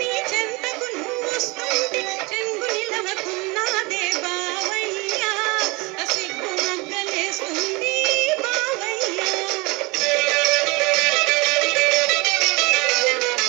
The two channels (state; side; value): quieter; left; 25.6 dB